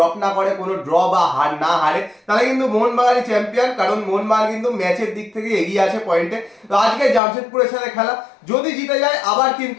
না করে, কোনো ড্র বা হার না হারে, তাহলে কিন্তু মোহনবাগানই চ্যাম্পিয়ন, কারণ মোহনবাগান কিন্তু ম্যাচের দিক থেকে এগিয়ে আছে পয়েন্টে। তো আজকে জামশেদপুরের সাথে খেলা, যদি জিতে যায় আবার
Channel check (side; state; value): right; drops out; at 7.2 s